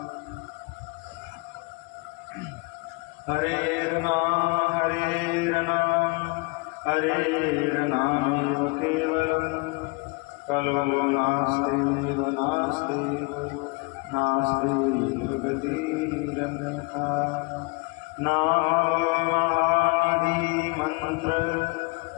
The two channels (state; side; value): quieter; right; 29.3 dB